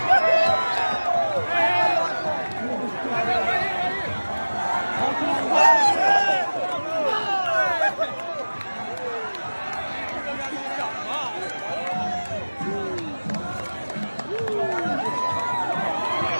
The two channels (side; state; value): both; inverted; correlation -1.00